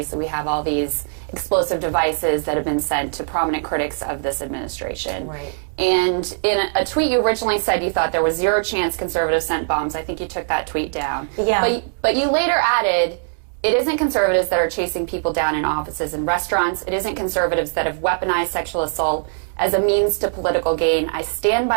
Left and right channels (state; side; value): silent; left; digital silence